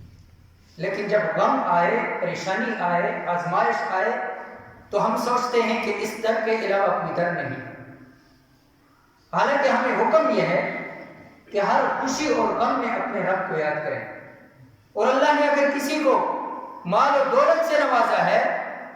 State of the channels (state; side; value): identical; both; correlation 1.00